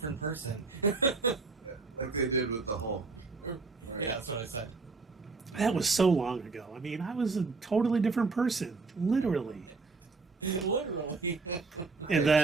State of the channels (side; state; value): left; quieter; 4.1 dB